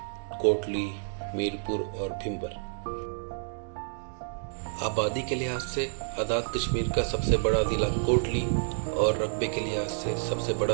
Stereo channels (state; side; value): silent; left; digital silence